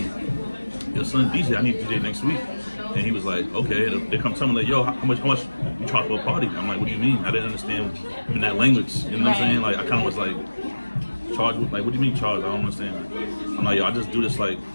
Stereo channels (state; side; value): inverted; both; correlation -1.00